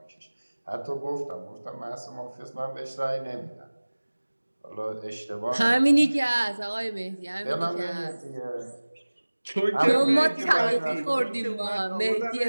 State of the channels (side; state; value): both; inverted; correlation -1.00